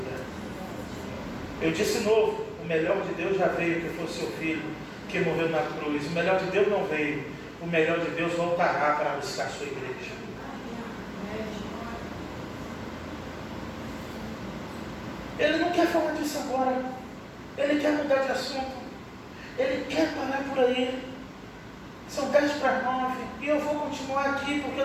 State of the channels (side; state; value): both; identical; correlation 1.00